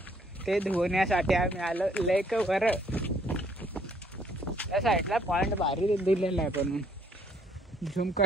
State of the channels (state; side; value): normal; both; correlation 0.65